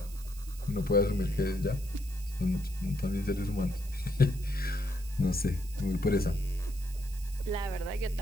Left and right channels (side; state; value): right; noise; hiss, 18 dB below the sound